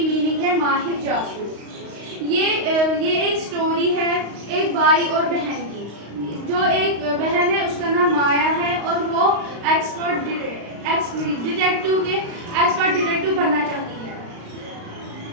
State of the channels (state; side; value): late; left; 35 ms